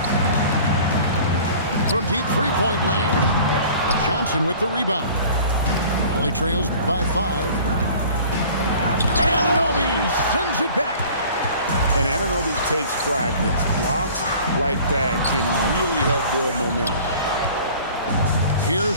From deep three-point land, Johnson with the rebound. Raleigh trails by 5. Anunoby sends it back. And Anunoby takes pride in this. Blocks like that can really help build momentum.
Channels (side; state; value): both; inverted; correlation -0.46